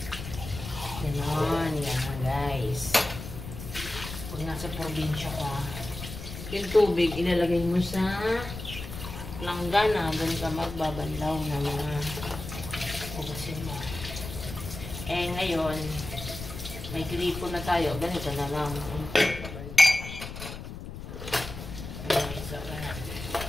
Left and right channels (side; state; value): left; noise; rumble, 10 dB below the sound